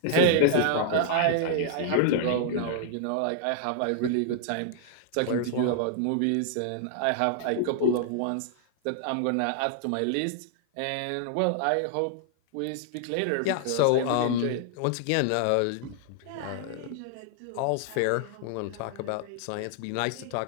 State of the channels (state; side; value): different; both; correlation -0.01